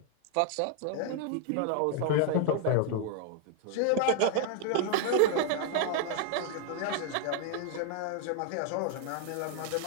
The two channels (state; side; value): different; both; correlation 0.00